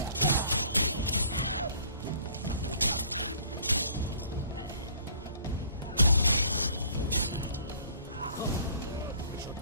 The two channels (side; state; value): both; inverted; correlation -0.55